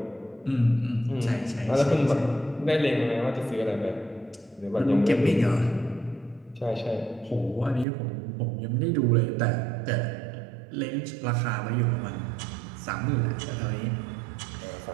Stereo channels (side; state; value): left; drops out; at 7.9 s